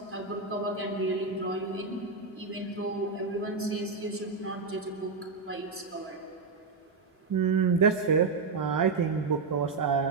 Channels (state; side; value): quieter; left; 4.4 dB